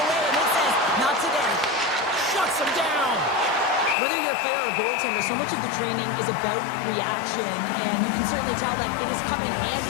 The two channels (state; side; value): drops out; right; at 4.0 s